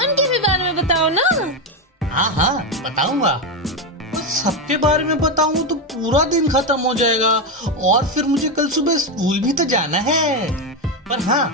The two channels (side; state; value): both; normal; correlation 0.09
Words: भी बारे में बताओ ना। हाँ बताऊंगा। सबके बारे में बताऊं तो पूरा दिन खत्म हो जाएगा और फिर मुझे कल सुबह स्कूल भी तो जाना है। पर हाँ,